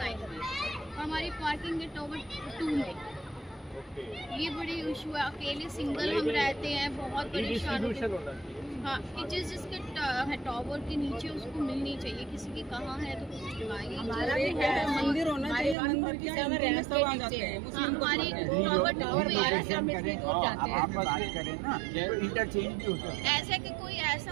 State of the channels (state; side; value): drops out; left; at 15.8 s